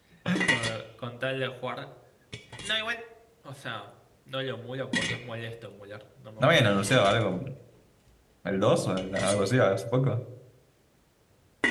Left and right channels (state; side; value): identical; both; correlation 1.00